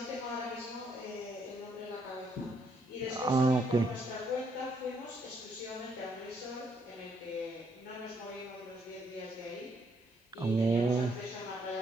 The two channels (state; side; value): normal; both; correlation 0.71